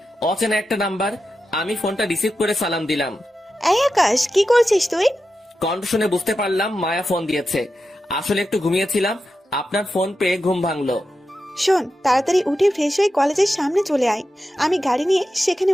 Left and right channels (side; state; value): both; normal; correlation 0.90